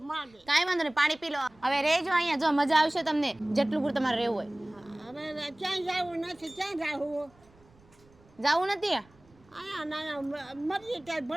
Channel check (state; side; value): noise; right; rumble, 29 dB below the sound